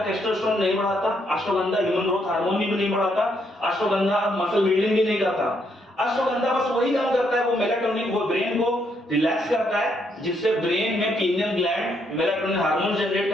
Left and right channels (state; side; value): normal; both; correlation 0.74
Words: टेस्टोस्टेरोन नहीं बढ़ाता, अश्वगंधा ह्यूमन ग्रोथ हार्मोन भी नहीं बढ़ाता, अश्वगंधा मसल बिल्डिंग भी नहीं करता। अश्वगंधा बस वही काम करता है, वो मेलाटोनिन, वो ब्रेन को रिलैक्स करता है, जिससे ब्रेन में pineal gland melatonin hormone generate